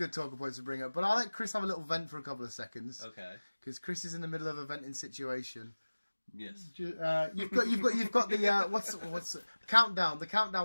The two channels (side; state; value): both; inverted; correlation -1.00